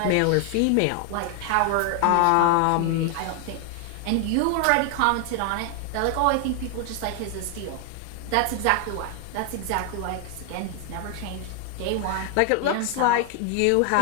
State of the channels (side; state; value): both; different; correlation 0.00